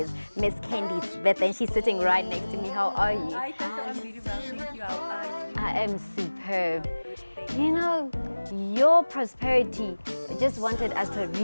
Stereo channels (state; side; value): inverted; both; correlation -1.00